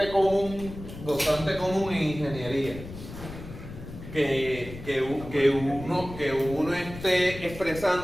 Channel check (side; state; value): left; noise; rumble, 12 dB below the sound